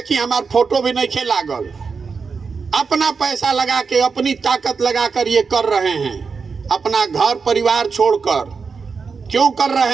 हमार फोटो भी नहीं खे लागल। अपना पैसा लगा के अपनी ताकत लगा कर ये कर रहे हैं। अपना घर परिवार छोड़कर क्यों कर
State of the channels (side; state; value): left; quieter; 5.2 dB